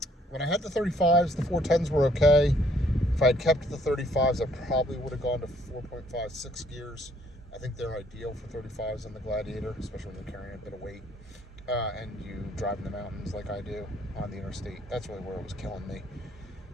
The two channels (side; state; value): both; normal; correlation 0.64